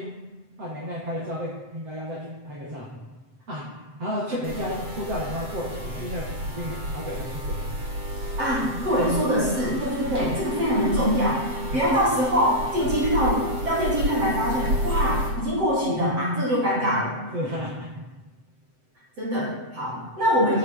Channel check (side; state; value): left; late; 7.8 ms